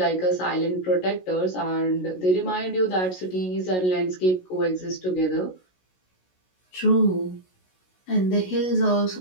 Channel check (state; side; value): late; right; 16 ms